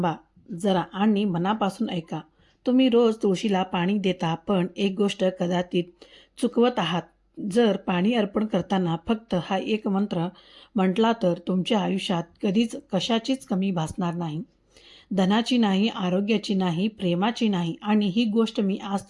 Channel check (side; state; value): both; identical; correlation 1.00